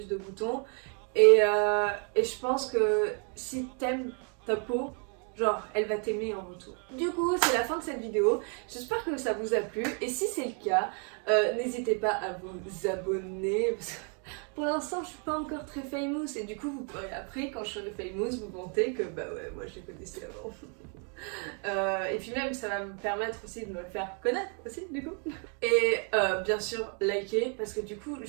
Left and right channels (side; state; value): left; quieter; 40.0 dB